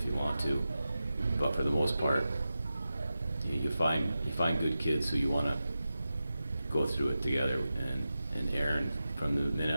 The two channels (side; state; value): both; inverted; correlation -0.92